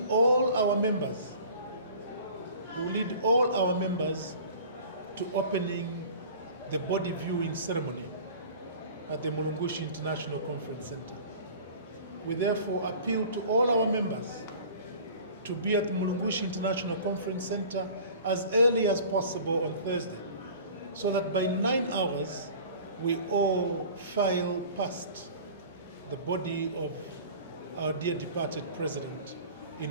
all our members to opening the body viewing ceremony at the Mulungushi International Conference Center. We therefore appeal to all our members to be at the Mulungushi International Conference Center as early as possible on Thursday, so that by 9 hours we all file past the body of our dear departed president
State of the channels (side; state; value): both; inverted; correlation -0.43